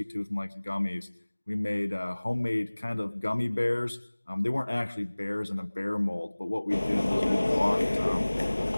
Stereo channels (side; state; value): both; inverted; correlation -1.00